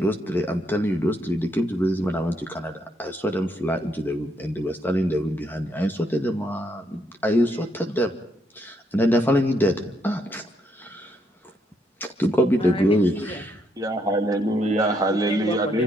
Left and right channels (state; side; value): normal; both; correlation 0.75